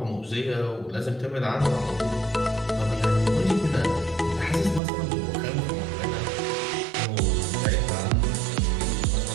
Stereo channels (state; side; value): drops out; left; at 4.8 s